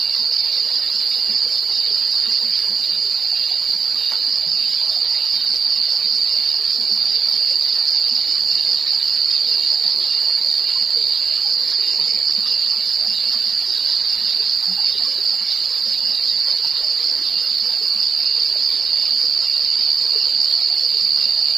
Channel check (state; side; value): quieter; left; 5.4 dB